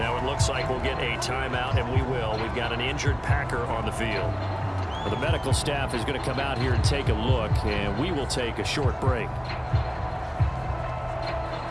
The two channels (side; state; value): both; identical; correlation 1.00